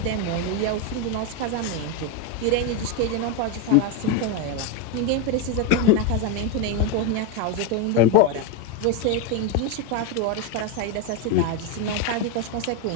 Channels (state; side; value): different; both; correlation 0.04